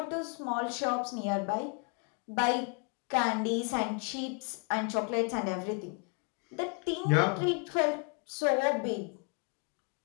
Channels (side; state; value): right; quieter; 35.7 dB